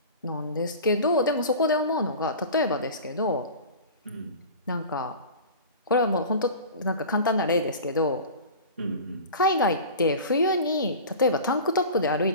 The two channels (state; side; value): inverted; both; correlation -0.36